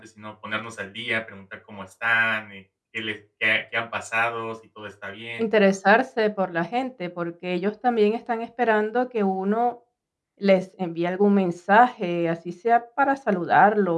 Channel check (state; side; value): identical; both; correlation 1.00